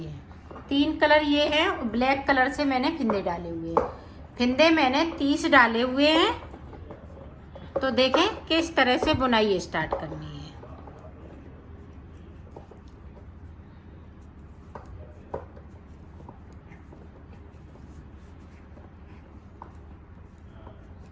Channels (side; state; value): both; identical; correlation 1.00